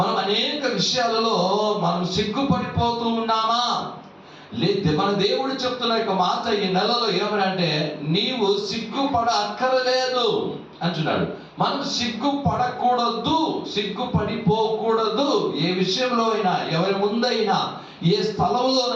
మనం అనేక విషయాలలో మనం సిగ్గుపడిపోతూ ఉన్నామా? లేదు. మన దేవుడు చెప్తున్న యొక్క మాట ఈ నెలలో ఏమనంటే నీవు సిగ్గుపడ అక్కరలేదు అంటున్నాడు. మనం సిగ్గుపడకూడదు, సిగ్గుపడిపోకూడదు. ఏ విషయంలో అయినా, ఎవరి ముందైనా, ఏ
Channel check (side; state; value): both; identical; correlation 1.00